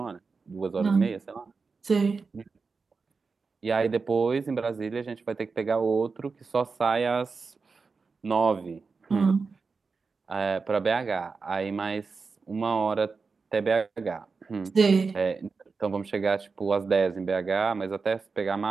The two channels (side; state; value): left; quieter; 4.7 dB